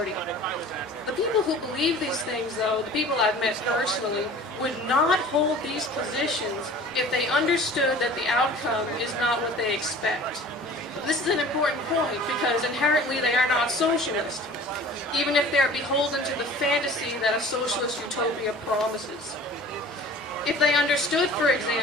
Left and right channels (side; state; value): both; normal; correlation 0.44